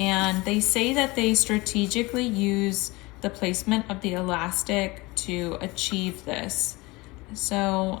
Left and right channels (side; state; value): right; quieter; 23.0 dB